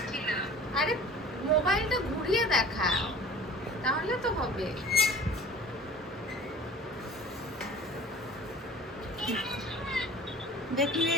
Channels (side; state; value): both; normal; correlation 0.43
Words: আরে মোবাইলটা ঘুরিয়ে দেখাও তাহলে তো হবে। দেখিয়ে